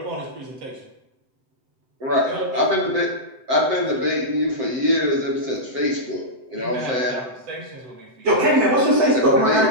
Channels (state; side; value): late; left; 7.9 ms